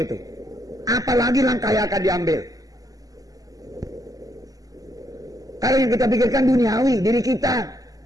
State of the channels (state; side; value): late; left; 0.17 ms